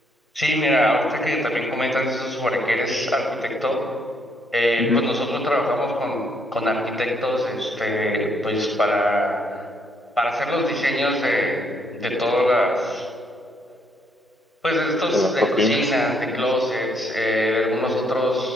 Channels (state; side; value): normal; both; correlation 0.71